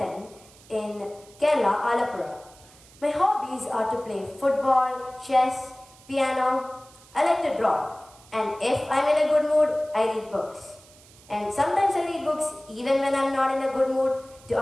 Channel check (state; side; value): noise; right; hiss, 25 dB below the sound